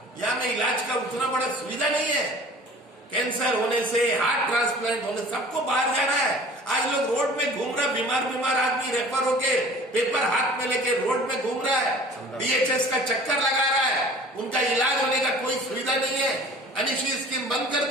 यहाँ में इलाज का उतना बड़ा सुविधा नहीं है। कैंसर होने से, हार्ट ट्रांसप्लांट होने, सबको बाहर जाना है। आज लोग रोड में घूम रहा है, बीमार आदमी रेफर होके पेपर हाथ में लेके रोड में घूम रहा है, डीएचएस का चक्कर लगा रहा है, उनका इलाज होने का कोई सुविधा नहीं है। अनिशी स्कीम बंद कर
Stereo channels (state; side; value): normal; both; correlation 0.46